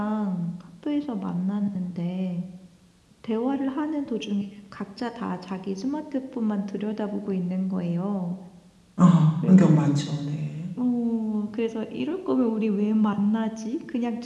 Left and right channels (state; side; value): identical; both; correlation 1.00